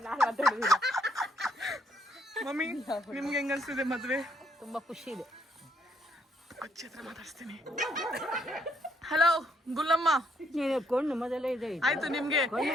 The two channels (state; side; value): normal; both; correlation 0.71